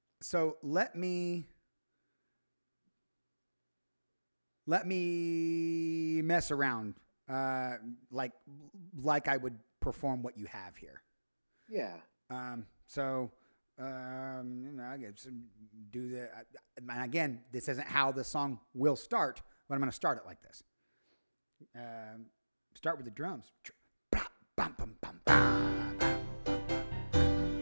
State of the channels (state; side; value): inverted; both; correlation -1.00